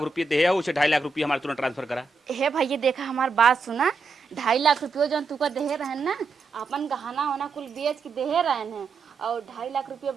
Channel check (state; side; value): quieter; left; 4.3 dB